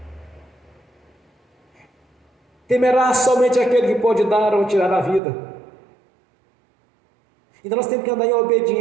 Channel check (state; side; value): drops out; left; at 5.2 s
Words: temerá somente aquele que pode dar ou tirar a vida. Então nós temos que andar em